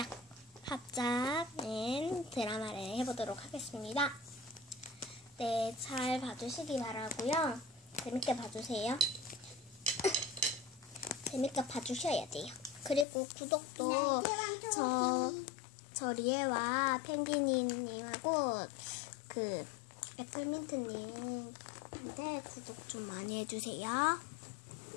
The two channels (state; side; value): drops out; right; at 13.1 s